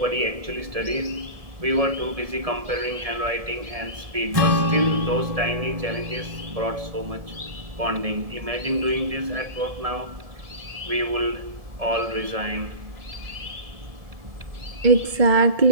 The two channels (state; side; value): late; left; 1.7 ms